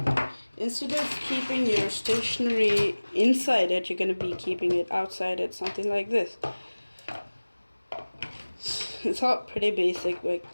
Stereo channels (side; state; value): both; inverted; correlation -1.00